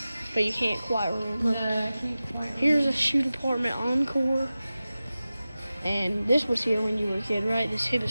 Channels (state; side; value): inverted; both; correlation -0.95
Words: But you can't quite remember. No, I can't quite remember. Here's a shoe department Encore. And this was here when you were a kid, right? This Hibbett